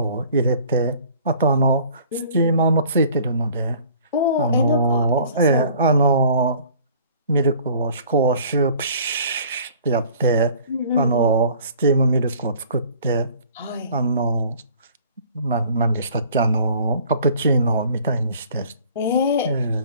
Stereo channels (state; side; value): inverted; both; correlation -0.51